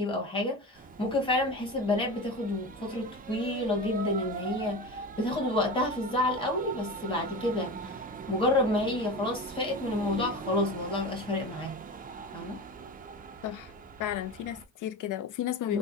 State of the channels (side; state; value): both; normal; correlation 0.28